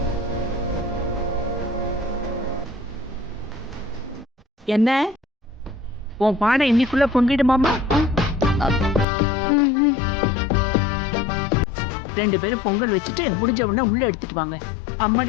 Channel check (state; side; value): drops out; right; at 9.1 s